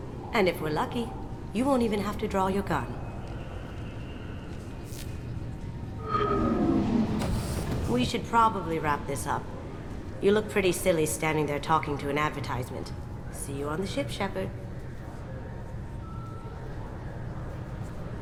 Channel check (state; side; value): identical; both; correlation 1.00